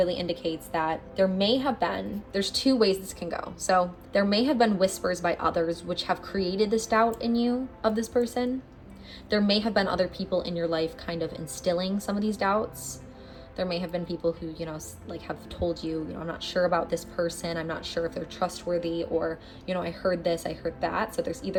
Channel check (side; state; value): both; identical; correlation 1.00